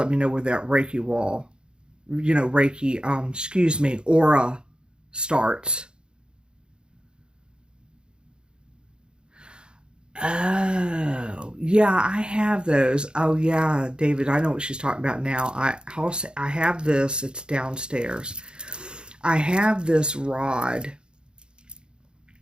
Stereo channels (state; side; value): late; left; 0.050 ms